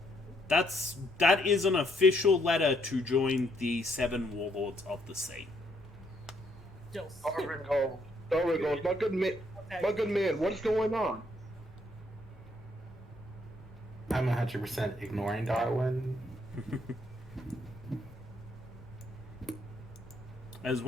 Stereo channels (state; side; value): normal; both; correlation 0.71